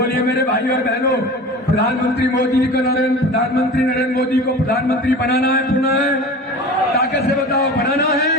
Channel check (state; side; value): normal; both; correlation 0.36